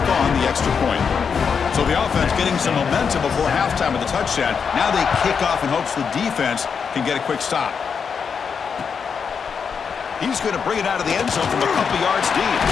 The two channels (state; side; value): quieter; right; 6.3 dB